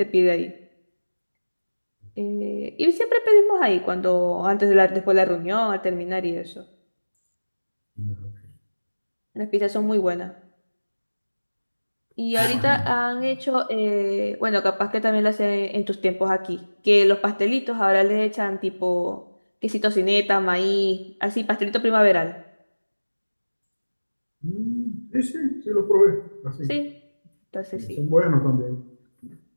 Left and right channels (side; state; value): both; inverted; correlation -1.00